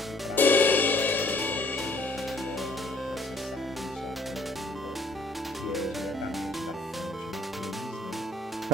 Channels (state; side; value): normal; both; correlation 0.59